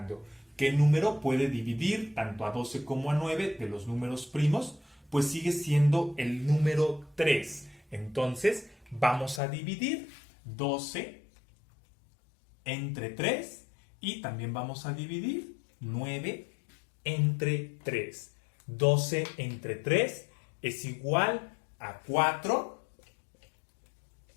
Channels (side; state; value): right; drops out; at 9.4 s